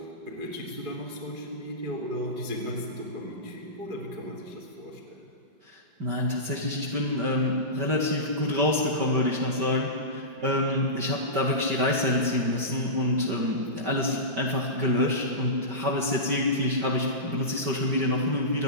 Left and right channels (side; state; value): left; late; 5.1 ms